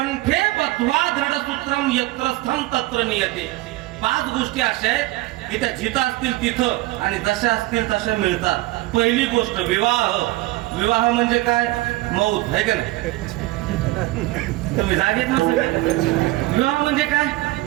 लब्ध्वा दृढसूत्रम यत्र स्थम तत्र नियते. 5 गोष्टी अशा आहेत की त्या जिथं असतील तिथं आणि जशा असतील तशा मिळतात. पहिली गोष्ट विवाह. विवाह म्हणजे काय? मौत आहे का नाही? तुम्ही जागेत ना सगळे. विवाह म्हणजे काय?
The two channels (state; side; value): quieter; left; 19.1 dB